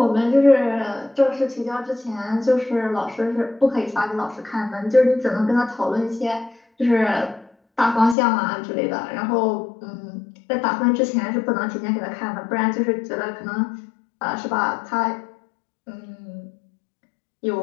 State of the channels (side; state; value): right; drops out; at 8.2 s